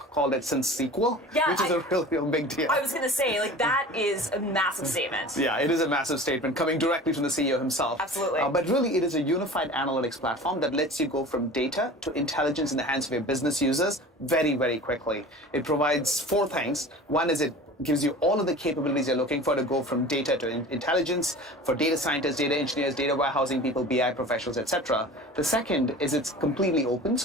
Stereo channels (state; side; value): normal; both; correlation 0.39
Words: it since SQL, which is a real big deal. I was going to say, like, that is a massive statement. Yeah, it is a massive statement coming directly from the CEO himself. Absolutely. But really, it is a unified analytics platform that lets you go from data to intelligence in the hands of your business users very, very quickly. It provides 4 things. One is it gives you all of the capabilities you're looking for to go from data to intelligence for data scientists, data engineers, data warehousing people, BI professionals, etc. The second is it's completely open,